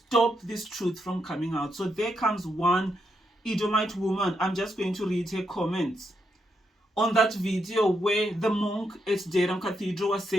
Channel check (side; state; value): both; normal; correlation 0.81